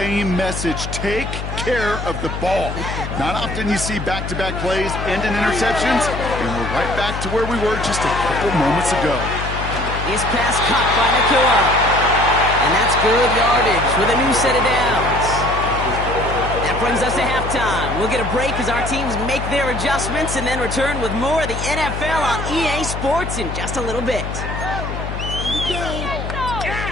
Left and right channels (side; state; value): left; noise; hum, 6 dB below the sound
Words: message. Take care of the ball. Not often you see back-to-back plays end in interceptions, and we're right back to where we were just a couple moments ago. His pass caught by Nakua. And that's good yardage with a new set of downs. That brings us to halftime. We'll get a break as our teams make their adjustments and then return with more of the NFL on EA Sports in just a little bit.